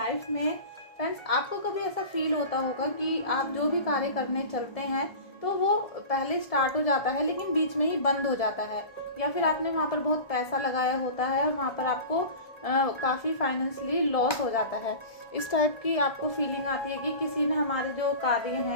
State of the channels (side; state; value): right; late; 1.7 ms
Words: में। फ्रेंड्स, आपको कभी ऐसा फील होता होगा कि आप जो भी कार्य करने चलते हैं तो वो पहले स्टार्ट हो जाता है लेकिन बीच में ही बंद हो जाता है, या फिर आपने वहाँ पर बहुत पैसा लगाया होता है और वहाँ पर आपको काफ़ी फाइनेंशियली लॉस हो जाता है। इस टाइप की आपको फीलिंग आती है कि किसी ने हमारे जो कार्य